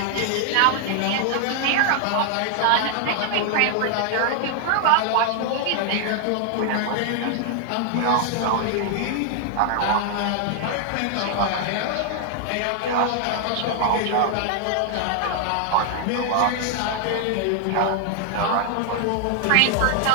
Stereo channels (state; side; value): different; both; correlation 0.00